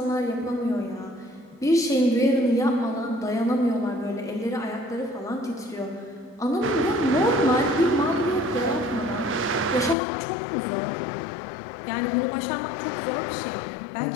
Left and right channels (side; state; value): right; drops out; at 10.0 s